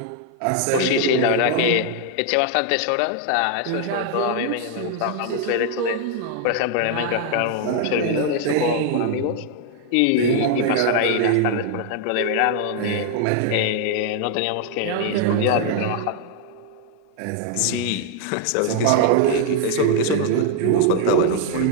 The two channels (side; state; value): both; different; correlation 0.00